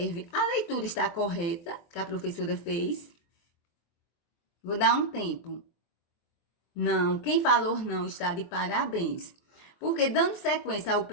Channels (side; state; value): right; late; 23 ms